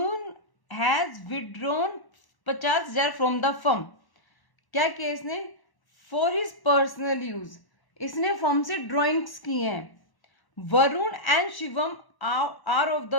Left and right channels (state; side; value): late; right; 1.1 ms